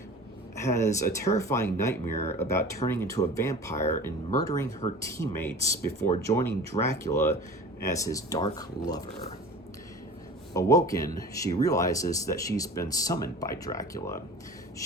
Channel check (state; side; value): normal; both; correlation 0.39